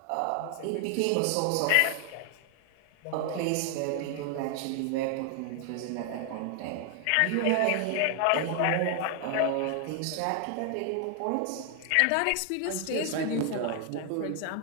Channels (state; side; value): different; both; correlation 0.00